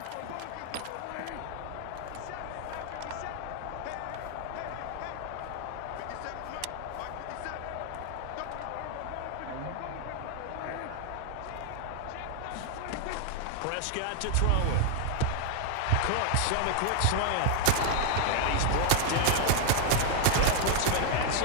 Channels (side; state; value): both; different; correlation 0.00